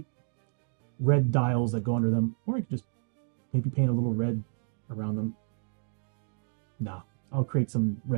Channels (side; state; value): left; silent; digital silence